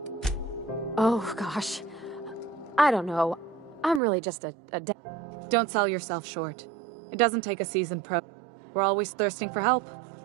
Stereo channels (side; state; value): left; drops out; at 4.0 s